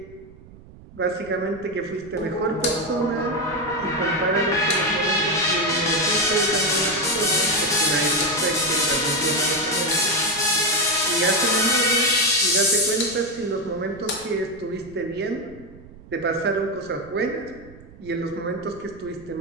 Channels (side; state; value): right; noise; rumble, 21 dB below the sound